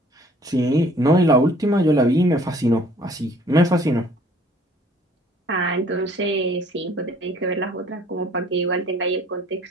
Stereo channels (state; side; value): normal; both; correlation 0.56